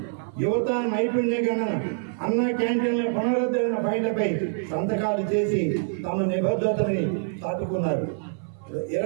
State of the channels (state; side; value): silent; left; 56 dB below the other